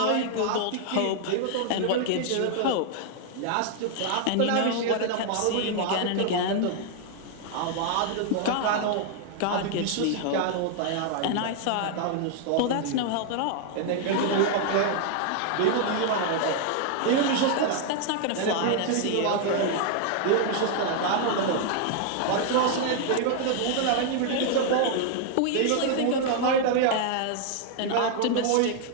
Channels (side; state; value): both; different; correlation 0.00